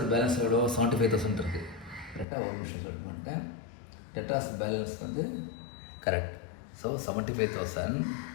பேலன்ஸ் எவ்வளோ? 75,000 இருக்குது. கரெக்டாக ஒரு நிமிஷம் சொல்ல மாட்டேன். டெட்டார்ஸ் பேலன்ஸ் வந்து correct. So 75,000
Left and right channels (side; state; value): right; drops out; at 2.2 s